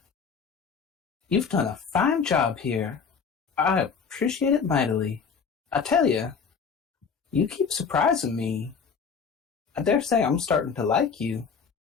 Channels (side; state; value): right; quieter; 6.0 dB